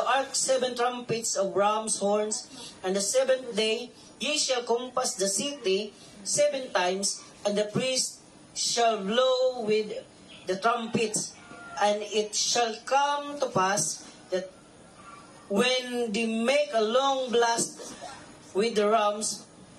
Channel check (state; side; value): identical; both; correlation 1.00